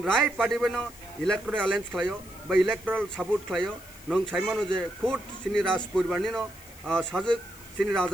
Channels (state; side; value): noise; left; hiss, 21 dB below the sound